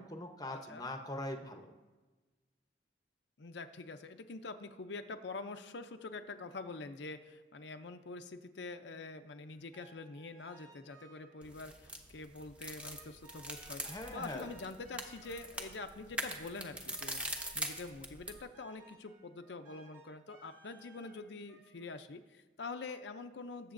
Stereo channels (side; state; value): both; normal; correlation 0.10